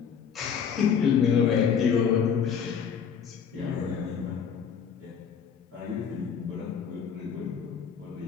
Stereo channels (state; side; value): quieter; right; 7.1 dB